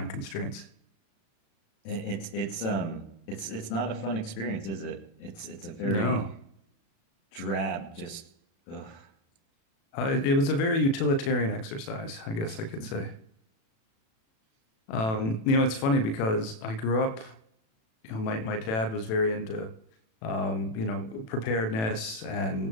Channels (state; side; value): late; right; 36 ms